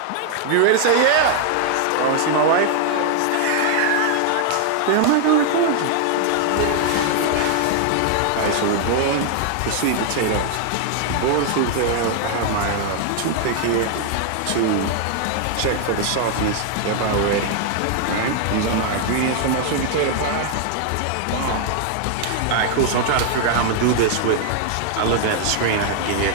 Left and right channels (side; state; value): both; different; correlation 0.00